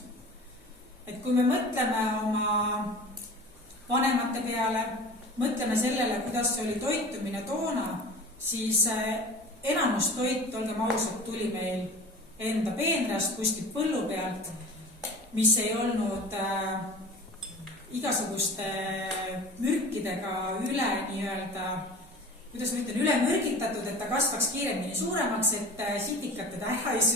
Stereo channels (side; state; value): both; normal; correlation 0.38